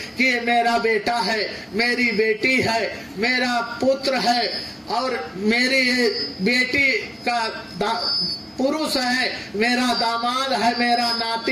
कि ये मेरा बेटा है, मेरी बेटी है, मेरा पुत्र है और मेरी बेटी का पुरुष है, मेरा दामाद है, मेरा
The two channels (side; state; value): both; identical; correlation 1.00